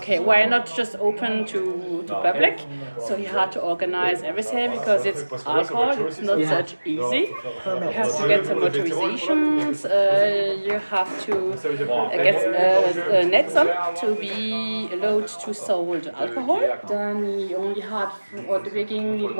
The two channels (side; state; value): both; inverted; correlation -1.00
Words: why not just open to public? So he had to organize everything because it's alcohol, it's not such easy. You have to get some authorizations, you have to get nets on to be allowed to sold alcohol. Then we only had, at the beginning it